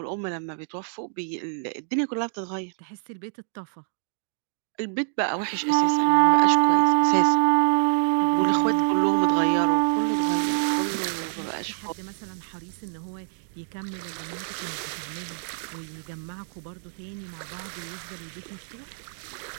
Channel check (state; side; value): silent; left; digital silence